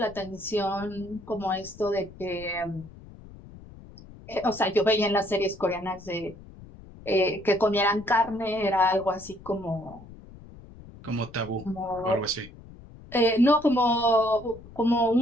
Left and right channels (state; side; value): noise; left; rumble, 19 dB below the sound